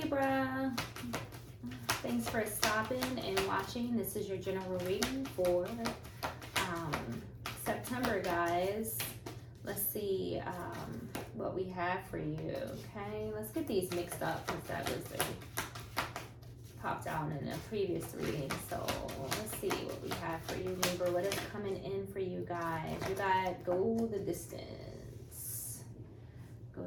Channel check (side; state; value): both; identical; correlation 1.00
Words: Thanks for stopping and watching. This is your general reading for September, guys. Let's see what we have for you. Okay, let's get these mixed up because that was popped out in a previous reading. So let's see what we have for you, Libra. What is coming in for you guys? You got go the distance. Go